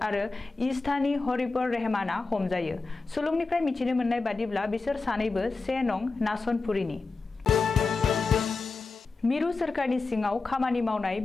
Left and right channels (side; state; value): right; quieter; 3.9 dB